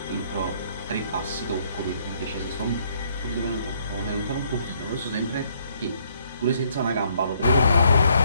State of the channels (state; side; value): inverted; both; correlation -0.67